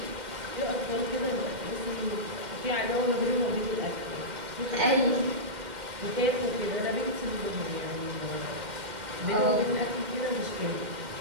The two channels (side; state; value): left; late; 2.1 ms